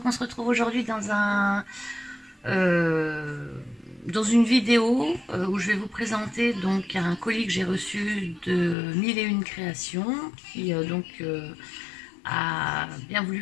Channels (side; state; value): right; drops out; at 8.8 s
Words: on se retrouve aujourd'hui dans une vidéo où je vais vous présenter donc un colis que j'ai reçu de 1001 créations qui a bien